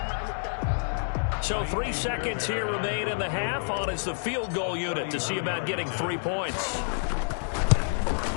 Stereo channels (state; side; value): silent; right; 59 dB below the other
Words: So 3 seconds here remain in the half. On is the field goal unit to see about getting 3 points.